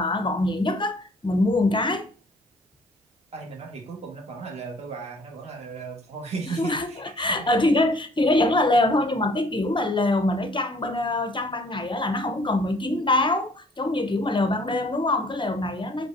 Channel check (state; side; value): normal; both; correlation 0.57